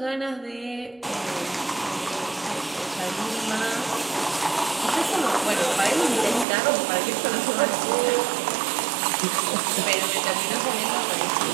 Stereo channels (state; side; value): drops out; left; at 6.5 s